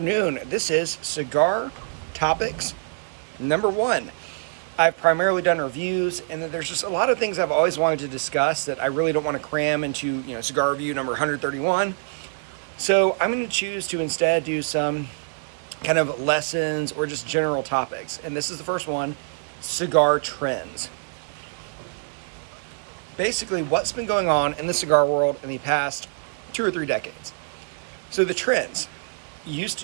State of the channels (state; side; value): silent; left; digital silence